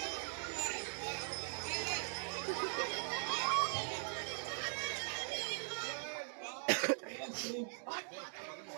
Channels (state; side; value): silent; left; digital silence